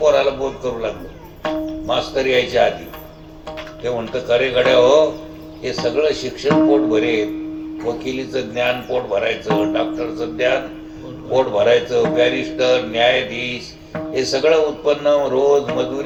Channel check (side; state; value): both; identical; correlation 1.00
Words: बोध करू लागलो, मास्तर यायच्या आधी. ते म्हणतं, खरे गड्या हो, हे सगळं शिक्षण पोट भरेल, वकिलीचं ज्ञान पोट भरायचं, डॉक्टरचं ज्ञान पोट भरायचं, बॅरिस्टर, न्यायाधीश, हे सगळं उत्पन्न, रोज